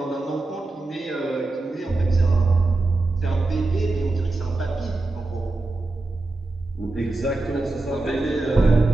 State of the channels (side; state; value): left; quieter; 3.1 dB